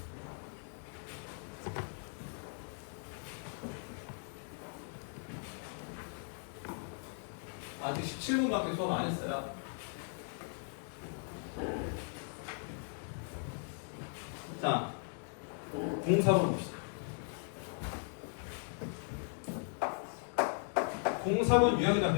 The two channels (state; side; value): silent; right; 52 dB below the other